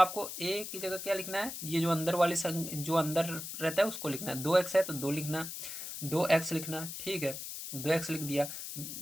a की जगह क्या लिखना है, ये जो अंदर वाली जो अंदर रहता है उसको लिखना है। 2x है तो 2 लिखना, 2x लिखना। ठीक है, 2x लिख दिया।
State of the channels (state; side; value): noise; left; hiss, 8 dB below the sound